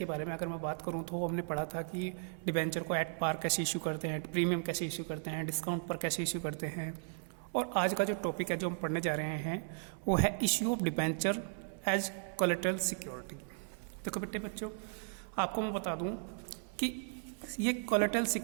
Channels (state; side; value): silent; left; 54 dB below the other